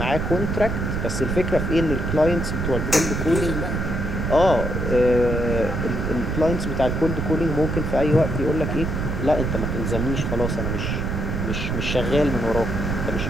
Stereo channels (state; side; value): noise; right; rumble, 1 dB below the sound